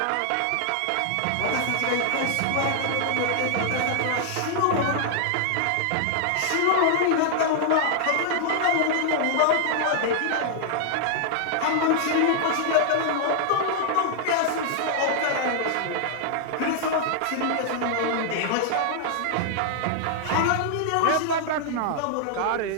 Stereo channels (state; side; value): different; both; correlation -0.01